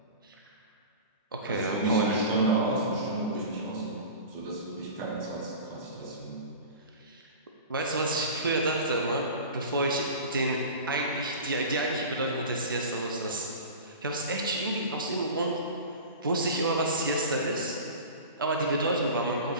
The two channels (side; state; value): both; inverted; correlation -0.34